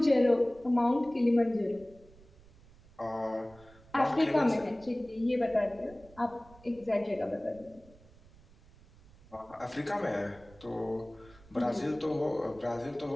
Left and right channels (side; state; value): right; noise; rumble, 25 dB below the sound